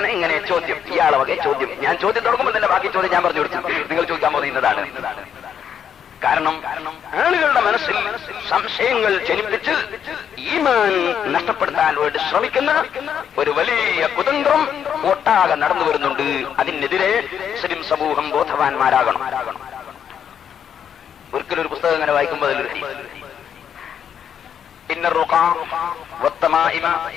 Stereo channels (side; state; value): right; quieter; 8.4 dB